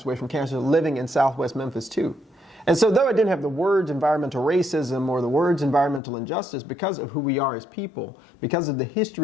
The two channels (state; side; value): drops out; right; at 6.0 s